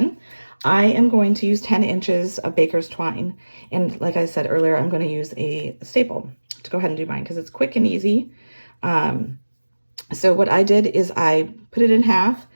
I am going to use 10 inches of baker's twine. And like I said earlier, I'm going to use a staple to go ahead and do mine because it's quick and easy. So what I did is I put it in half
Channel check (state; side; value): inverted; both; correlation -1.00